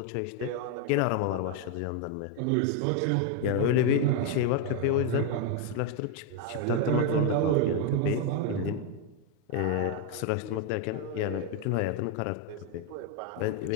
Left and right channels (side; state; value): both; different; correlation 0.01